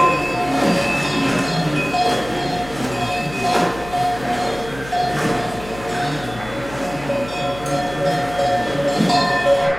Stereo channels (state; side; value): noise; left; hum, 15 dB below the sound